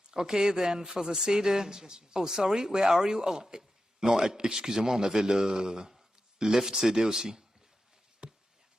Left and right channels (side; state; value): both; normal; correlation 0.91